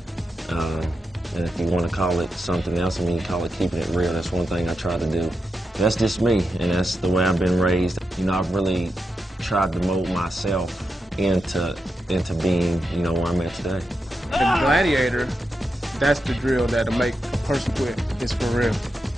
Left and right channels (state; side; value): normal; both; correlation 0.87